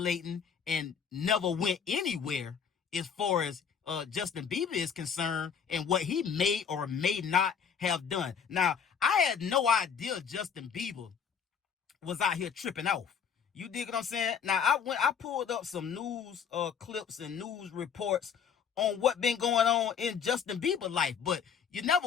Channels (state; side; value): quieter; right; 7.1 dB